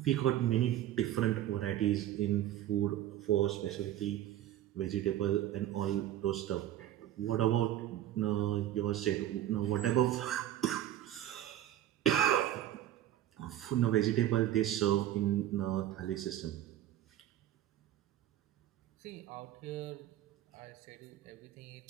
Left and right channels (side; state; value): left; quieter; 12.5 dB